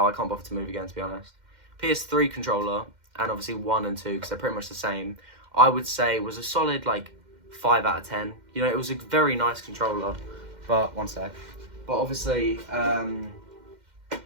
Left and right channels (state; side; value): late; left; 2.1 ms